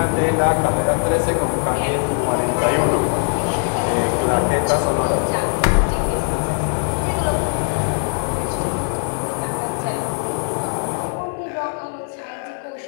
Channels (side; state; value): right; silent; 55 dB below the other